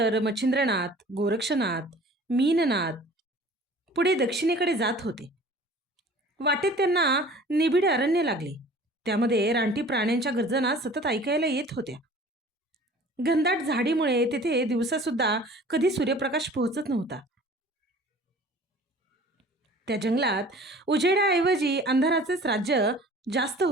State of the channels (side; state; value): both; normal; correlation 0.47